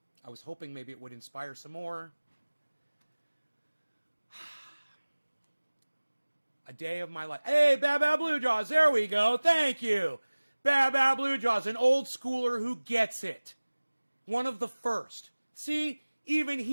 I was hoping maybe it would inspire some more. A day of my life. Hey, Bad Bad Blue Jaws. There we go. Thank you. Bad Bad Blue Jaws, an old schooler who gets it. One of the first. See, even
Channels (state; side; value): inverted; both; correlation -1.00